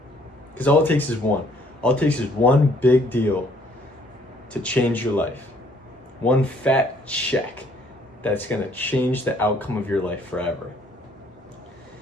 Because all it takes is one. All it takes is one big deal to change your life. One fat check that's gonna change the outcome of your life forever.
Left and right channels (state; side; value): normal; both; correlation 0.63